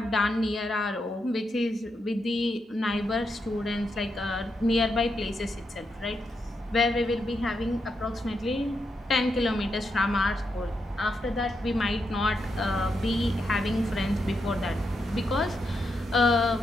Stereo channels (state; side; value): normal; both; correlation 0.83